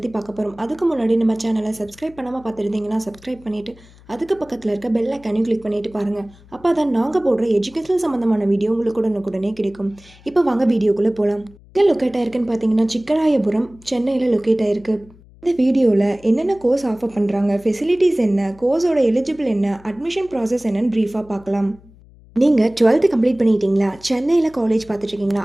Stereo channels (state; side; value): noise; left; hum, 25 dB below the sound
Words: பார்க்க போகிறோம். அதுக்கு முன்னாடி நம்ம சேனலை சப்ஸ்கிரைப் பண்ணாமல் பார்த்துருந்தீங்கன்னா சப்ஸ்கிரைப் பண்ணிவிட்டு அதுக்கு பக்கத்தில் இருக்க பெல் ஐக்கானையும் கிளிக் பண்ணிட்டு பாருங்கள். அப்போ தான் நாங்கள் போடுற எஜுகேஷனல் சம்மந்தமான வீடியோ உங்களுக்கு உடனுக்குடனே கிடைக்கும். இப்போ வாங்க வீடியோக்குள்ளே போகலாம். எங்கே லொக்கேட் ஆயிருக்குன்னு பார்த்தீங்கன்னா சிக்கராயபுரம், சென்னையில் லொக்கேட் ஆயிருக்கு. இந்த வீடியோவில் என்னென்ன கோர்ஸ் ஆஃபர் பண்ணுறாங்க, ஃபெசிலிட்டிஸ் என்ன, கோர்ஸோட எலிஜிபிள் என்ன, அட்மிஷன் ப்ராசஸ் என்னன்னு ப்ரீஃபாக பார்க்கலாம். நீங்கள் 12th கம்ப்ளீட் பண்ணிட்டீங்களா, சென்னையில் காலேஜ் பார்த்துட்ருக்கீங்களா,